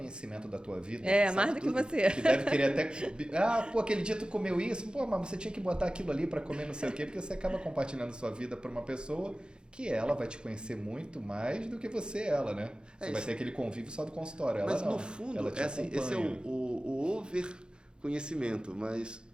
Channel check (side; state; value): left; late; 0.049 ms